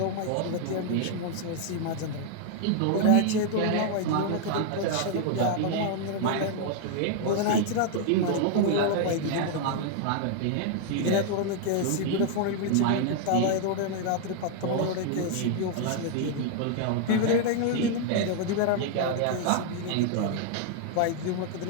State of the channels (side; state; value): both; different; correlation 0.00